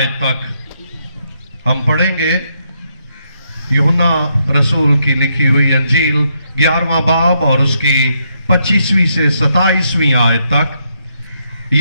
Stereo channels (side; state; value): both; inverted; correlation -0.78